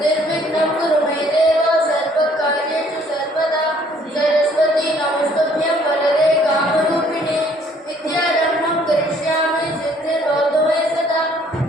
కురు మే దేవ సర్వకార్యేషు సర్వదా సరస్వతి నమస్తుభ్యం వరదే కామరూపిణి విద్యారంభం కరిష్యామి సిద్ధిర్భవతు మే సదా.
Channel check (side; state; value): both; normal; correlation 0.61